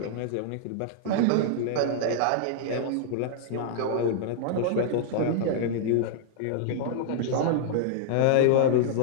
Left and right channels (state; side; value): different; both; correlation -0.01